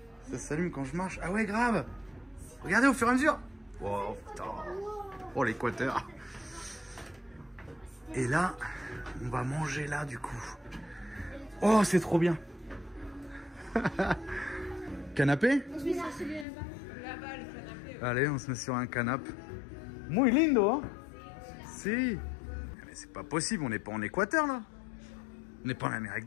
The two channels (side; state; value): right; drops out; at 16.4 s